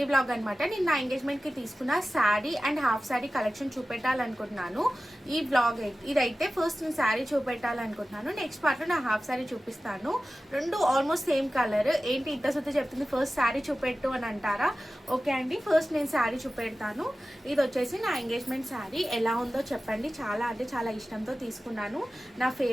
బ్లాగ్ అనమాట. నేను నా ఎంగేజ్మెంట్కి తీసుకున్న sari and half sari collection చూపెట్టాలనుకుంటున్నాను. ఈ బ్లాగ్ ఇదైతే ఫస్ట్ నేను శారీ చూపెట్టాలనుకుంటున్నాను. నెక్స్ట్ పార్ట్లో నా హాఫ్ శారీ చూపిస్తాను. రెండు ఆల్మోస్ట్ సేమ్ కలర్. ఏంటి ఇంత సుత్తి చెప్తుంది, ఫస్ట్ శారీ చూపెట్టు అని అంటారా? ఓకే అండి, ఫస్ట్ నేను శారీ చూపెడతాను. ఇది వచ్చేసి నా ఎంగేజ్మెంట్ శారీ. ఎలా ఉందో చెప్పండి. చాలా అంటే చాలా ఇష్టంతో తీసుకున్నాను. నా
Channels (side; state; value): both; normal; correlation 0.95